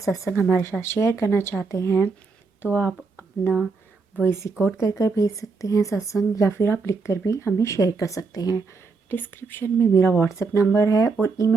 हमारे साथ शेयर करना चाहते हैं तो आप अपना वॉइस रिकॉर्ड कर कर भेज सकते हैं सत्संग, या फिर आप लिख कर भी हमें शेयर कर सकते हैं। डिस्क्रिप्शन में मेरा व्हाट्सएप नंबर है और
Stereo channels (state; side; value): quieter; left; 4.5 dB